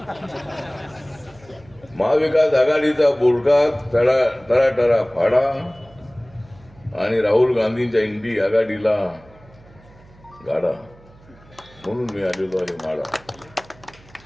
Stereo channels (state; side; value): noise; right; hum, 26 dB below the sound